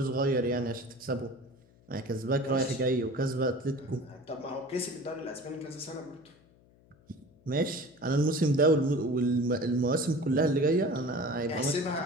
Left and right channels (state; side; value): noise; left; hum, 29 dB below the sound